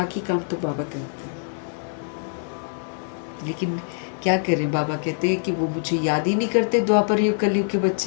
काम तो बाबा करते हैं। लेकिन क्या करें, बाबा कहते हैं कि वो मुझे याद ही नहीं करते। द्वापर युग कलयुग के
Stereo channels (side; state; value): right; silent; digital silence